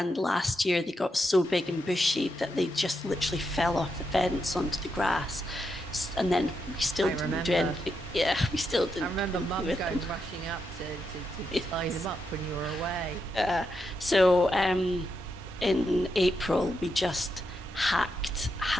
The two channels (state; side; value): normal; both; correlation 0.83